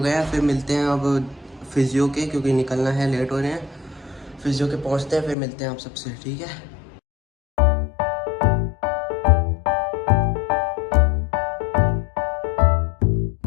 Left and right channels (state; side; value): drops out; right; at 5.4 s